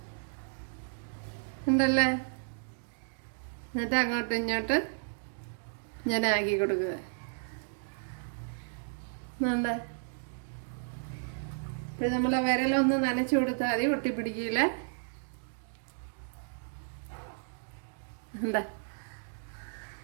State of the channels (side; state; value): left; silent; digital silence